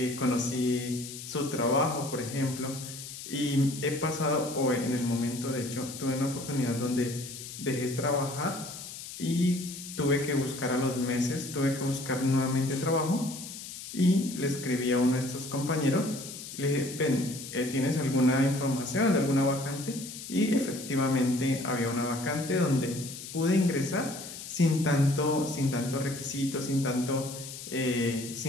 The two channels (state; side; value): noise; left; hiss, 11 dB below the sound